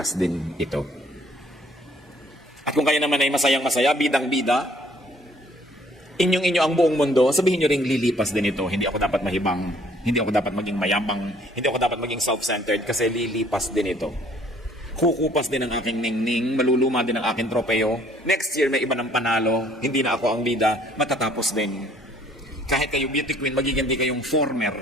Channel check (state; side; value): normal; both; correlation 0.60